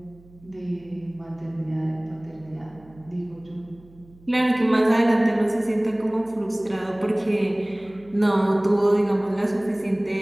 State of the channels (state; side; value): noise; right; hum, 26 dB below the sound